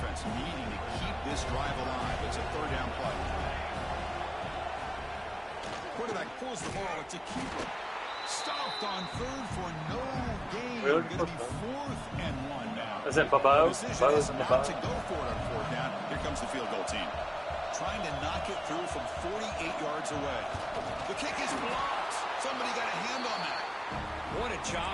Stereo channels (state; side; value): identical; both; correlation 1.00